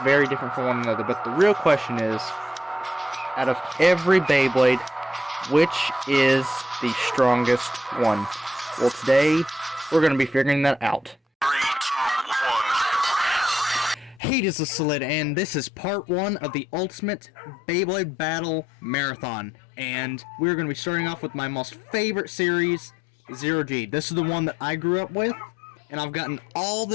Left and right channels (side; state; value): right; drops out; at 14.2 s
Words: very different from one another, but the real question is, out of every Beyblade, which is the strongest one? Well, today, we're going to be figuring that out. 3, 2, 1. Hey, this is Solid, and this is part 1 of the Ultimate Beyblade Battle Marathon. And we're going to be starting off with my most favorite series, Zero G. This is the one that I grew up with, and I've gotten all